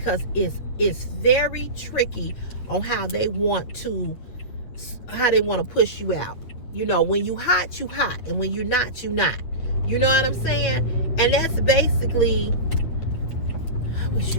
it's very tricky on how they want to push you out. You know, when you hot, you hot, and when you're not, you not. You know what I'm saying? And that's basically, I wish you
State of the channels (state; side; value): late; right; 9.0 ms